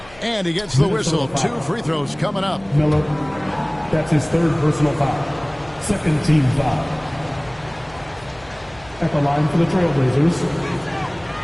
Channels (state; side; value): noise; left; hum, 24 dB below the sound